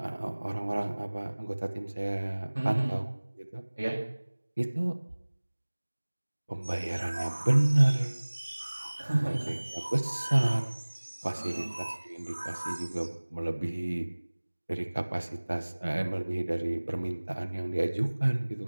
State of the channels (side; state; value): both; inverted; correlation -1.00